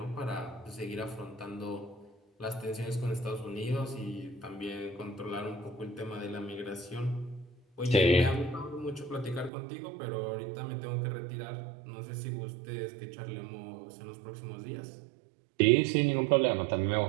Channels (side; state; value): left; drops out; at 9.5 s